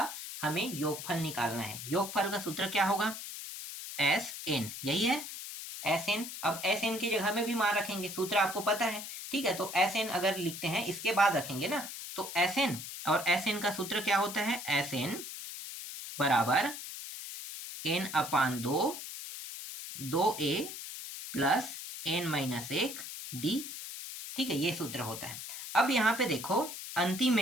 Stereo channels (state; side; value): noise; left; hiss, 9 dB below the sound